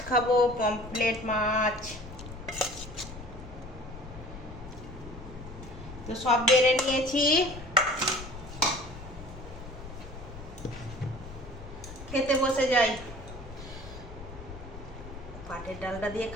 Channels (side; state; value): left; noise; rumble, 14 dB below the sound